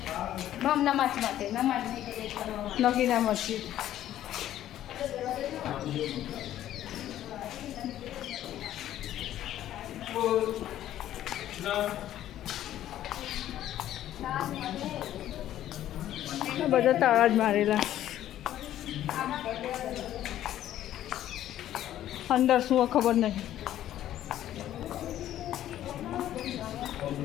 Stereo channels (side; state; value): right; quieter; 12.4 dB